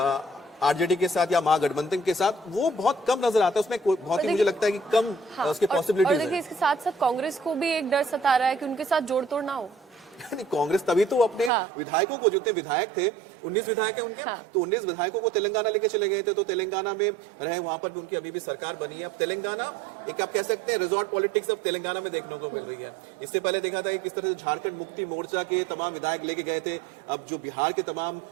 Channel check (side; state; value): left; drops out; at 11.5 s